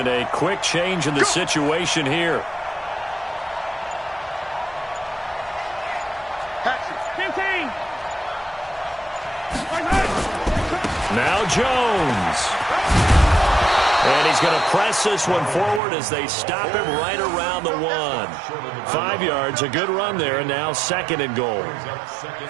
A quick change in the situation here. 15. Jones. And he's going to press this one forward as they stop him right around the 1. 5 yards, a good run there, and now 2nd and goal.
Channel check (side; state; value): left; drops out; at 15.8 s